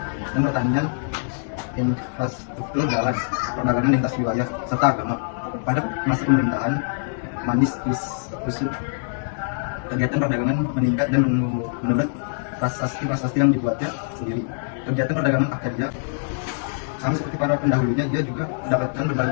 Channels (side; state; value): right; silent; digital silence